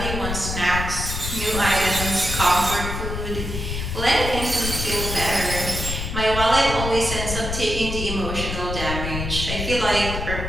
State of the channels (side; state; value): left; noise; rumble, 4 dB below the sound